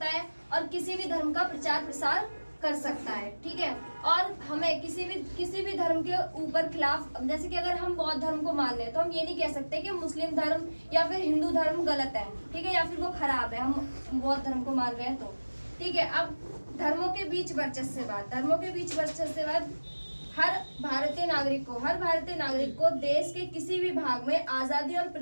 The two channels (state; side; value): inverted; both; correlation -1.00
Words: है और किसी भी धर्म का प्रचार प्रसार कर सकता है। ठीक है, और हमें किसी भी धर्म के ऊपर खिलाफ, जैसे कि अगर हम बौद्ध धर्म को मान लें तो हम ये नहीं कह सकते कि मुस्लिम धर्म या फिर हिंदू धर्म गलत है। ठीक है, या फिर वो खराब है, हम बौद्ध धर्म को मान रहे हैं तो। ठीक है, अब धर्मों के बीच वर्चस्ववाद, धर्मों के बीच वर्चस्ववाद हर भारतीय नागरिक को देश के किसी भी भाग में आजादी और